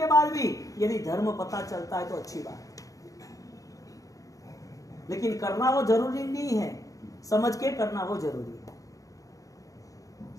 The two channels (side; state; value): right; late; 0.17 ms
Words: बाद भी यदि धर्म पता चलता है तो अच्छी बात, लेकिन करना वो जरूरी नहीं है, समझ के करना वो जरूरी है।